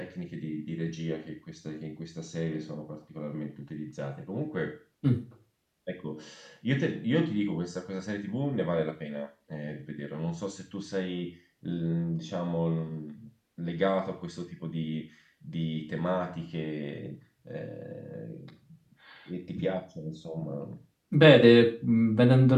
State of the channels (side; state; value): both; identical; correlation 1.00